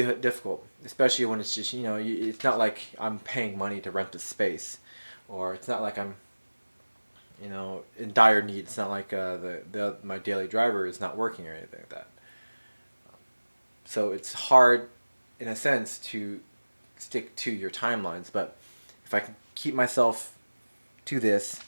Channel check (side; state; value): both; inverted; correlation -1.00